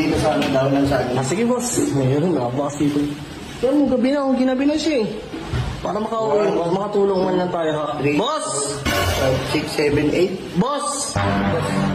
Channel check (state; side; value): identical; both; correlation 1.00